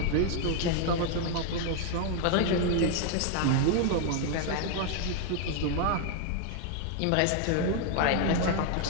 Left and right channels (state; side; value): different; both; correlation 0.01